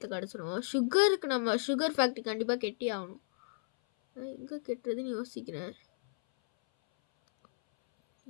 கிடச்சிரும். சுகருக்கு நம்ம சுகர் ஃபேக்ட்ரி கண்டிப்பாக கெட்டி ஆகணும். ஆனால் எங்கே கெட்டுறதுன்னு யோசிக்கிறேன்.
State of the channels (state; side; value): silent; right; 55 dB below the other